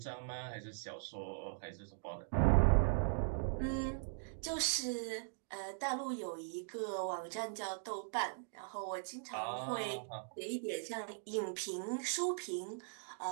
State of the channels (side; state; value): left; silent; digital silence